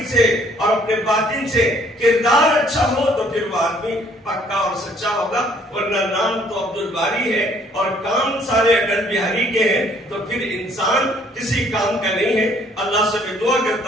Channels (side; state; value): both; normal; correlation 0.62